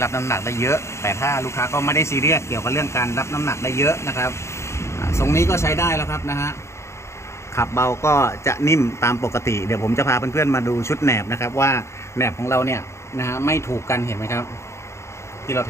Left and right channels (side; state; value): right; late; 0.13 ms